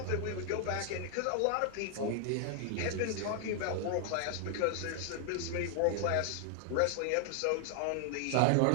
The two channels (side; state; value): both; different; correlation 0.00